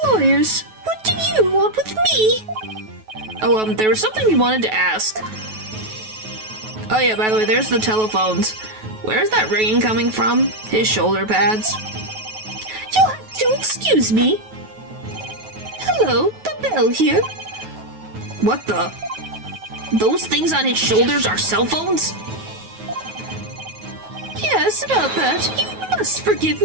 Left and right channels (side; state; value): left; late; 9.3 ms